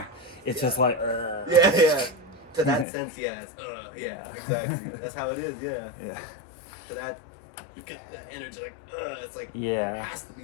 it's just Yeah. like, Yeah. Yeah. To that sense, yeah. It's, yeah. Exactly. That's how it is. Yeah. yeah, To that, you get that energy like, it's like Yeah. there has to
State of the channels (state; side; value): drops out; right; at 2.9 s